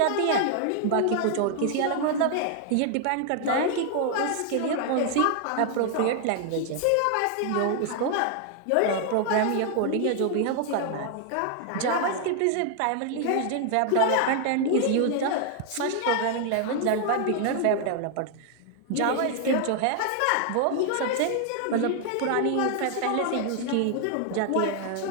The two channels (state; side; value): different; both; correlation 0.00